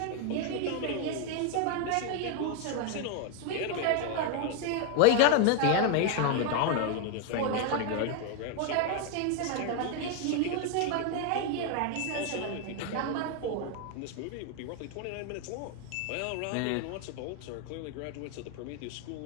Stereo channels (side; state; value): both; different; correlation 0.01